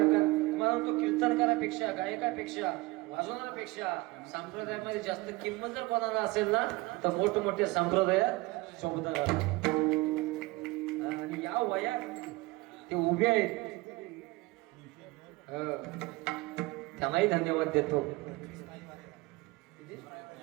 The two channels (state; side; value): quieter; left; 21.9 dB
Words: तो कीर्तनकारापेक्षा, गायकापेक्षा, वाजवणाऱ्यापेक्षा संप्रदायामध्ये जास्त किंमत जर कोणाला असेल ना तर मोठमोठ्या संप्रदायात चोपदार असतात. आणि या वयात ते उभे आहेत, त्यांनाही धन्यवाद देतो.